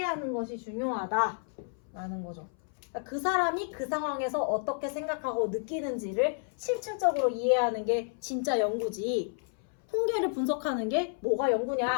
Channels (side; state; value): right; silent; 57 dB below the other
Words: 것이 중요하다라는 거죠. 그러니까 그 사람이 그 상황에서 어떻게 생각하고 느끼는지를 실질적으로 이해하는 게 진짜 연구지. 통계를 분석하는 게 뭐가